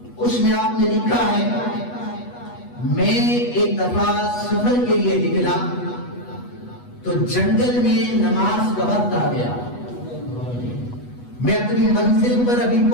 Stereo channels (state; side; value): late; right; 8.2 ms